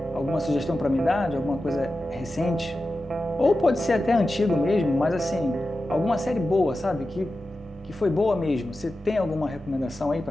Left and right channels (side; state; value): both; normal; correlation 0.92